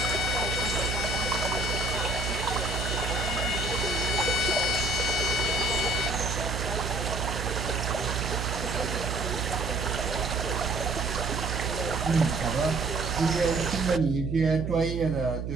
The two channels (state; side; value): noise; right; hum, 3 dB below the sound